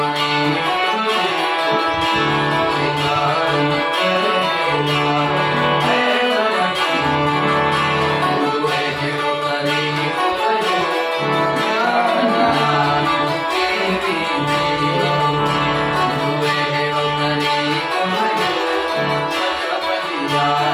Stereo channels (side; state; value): both; identical; correlation 1.00